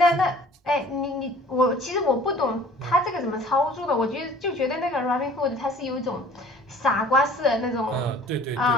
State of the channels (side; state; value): both; normal; correlation 0.49